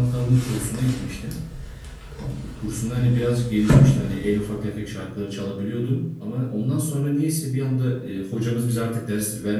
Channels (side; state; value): both; identical; correlation 1.00